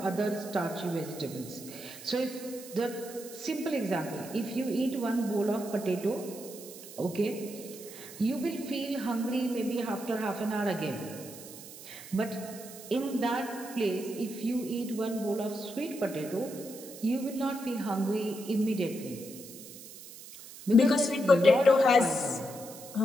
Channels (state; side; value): noise; right; hiss, 15 dB below the sound